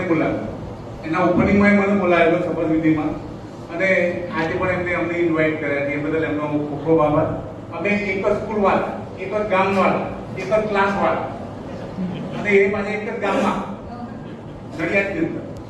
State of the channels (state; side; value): identical; both; correlation 1.00